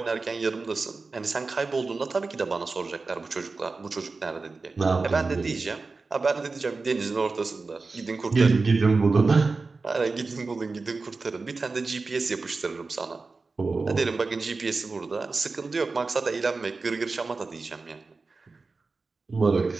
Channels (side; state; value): left; quieter; 4.0 dB